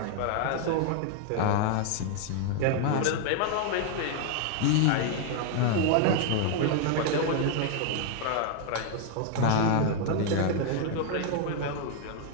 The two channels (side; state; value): both; different; correlation 0.00